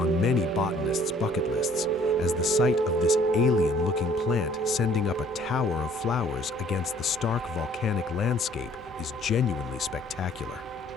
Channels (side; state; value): right; noise; hum, 22 dB below the sound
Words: many botanists' bucket lists, as the sight of this alien-looking plant sending up a tower of flowers against the stark volcanic landscape is genuinely spectacular.